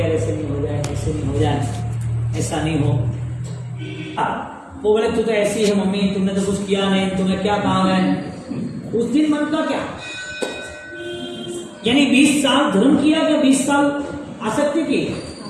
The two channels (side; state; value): both; identical; correlation 1.00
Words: ऐसे नहीं हो जाए, ऐसे नहीं हो जाए, ऐसा नहीं हो। वो बोले तू तो ऐसी है मम्मी, तुमने तो कुछ किया नहीं, तुम्हें क्या काम है। उस दिन मन का क्या, यानी 20 साल धर्म किया क्या 20 साल आसक्ति की?